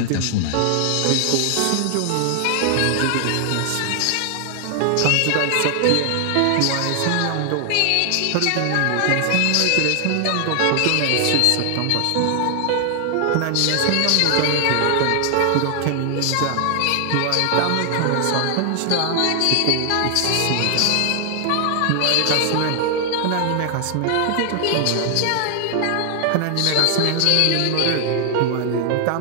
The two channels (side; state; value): both; different; correlation 0.00